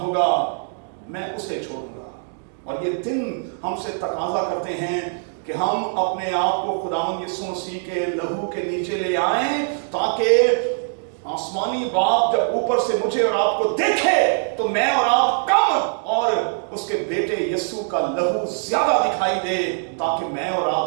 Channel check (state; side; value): silent; left; digital silence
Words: मैं उसे छोड़ूंगा। और ये दिन हमसे तकाजा करते हैं कि हम अपने आप को खुदावंद यीशु मसीह के लहू के नीचे ले आएं, ताकि आसमानी बाप जब ऊपर से मुझे और आपको देखे तो मैं और आप कम और उसके बेटे यीशु का लहू ज्यादा दिखाई दे, ताकि मैं और